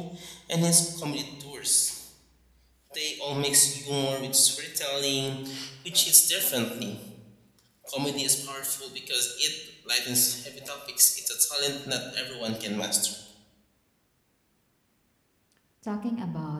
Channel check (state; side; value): identical; both; correlation 1.00